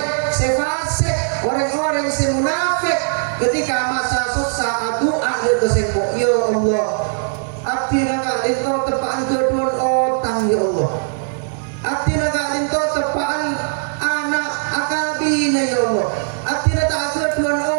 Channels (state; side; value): silent; left; digital silence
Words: sefasik, orang-orang semunafik ketika masa susah doa dia kesempok ya Allah abdi nak itu tepaan kedua otang ya Allah abdi nak itu tepaan anak akabina ya Allah abdi nak kedua